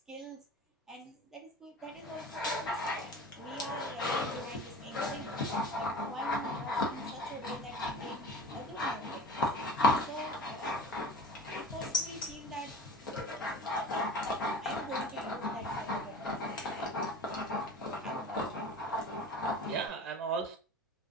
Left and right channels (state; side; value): normal; both; correlation 0.37